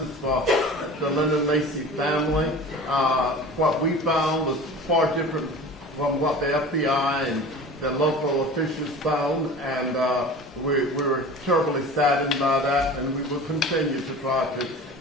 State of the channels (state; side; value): normal; both; correlation 0.37